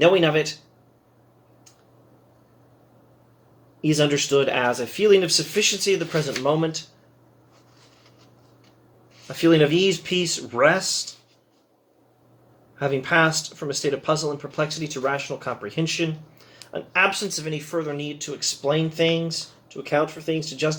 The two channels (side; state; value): both; identical; correlation 1.00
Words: of it is understood as a feeling of sufficiency of the present moment, a feeling of ease, peace, rest, having passed from a state of puzzle and perplexity to rational comprehension, an absence of any further need to explain things, to account for things, to